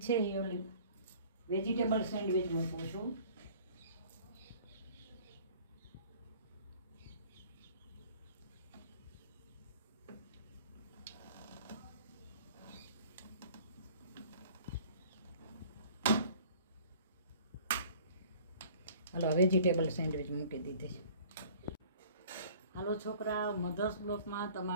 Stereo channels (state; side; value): inverted; both; correlation -0.50